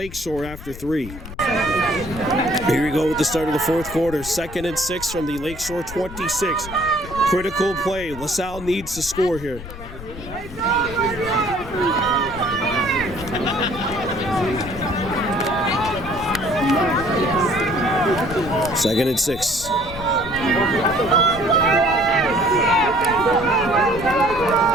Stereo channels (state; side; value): noise; left; rumble, 13 dB below the sound